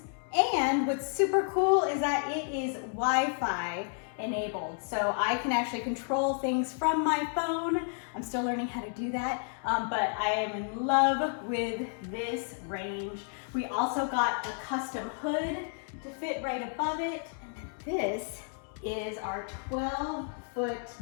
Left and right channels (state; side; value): silent; right; 57 dB below the other